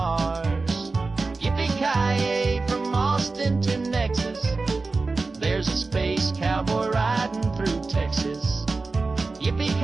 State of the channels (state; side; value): quieter; left; 3.8 dB